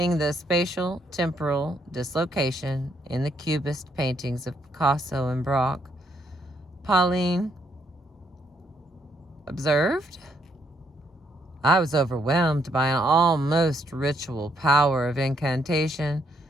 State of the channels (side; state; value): both; normal; correlation 0.72